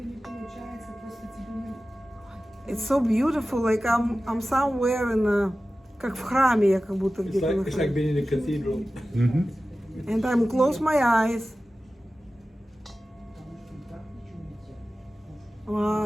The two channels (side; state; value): both; normal; correlation 0.95